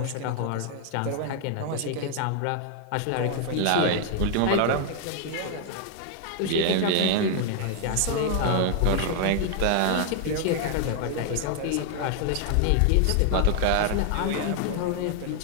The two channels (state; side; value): different; both; correlation 0.00